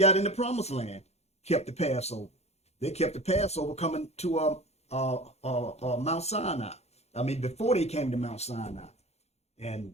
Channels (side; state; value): right; late; 0.31 ms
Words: in the promised land, kept the Passover. They kept the Passover coming to Mount Sinai. I mean, before they came to Mount Sinai. And